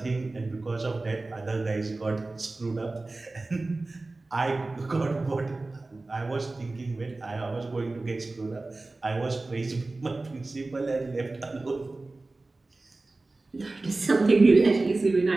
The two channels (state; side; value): quieter; left; 3.2 dB